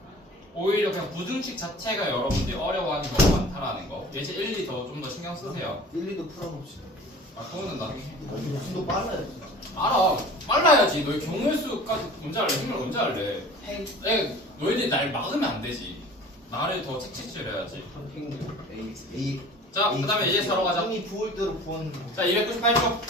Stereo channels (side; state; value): both; normal; correlation 0.43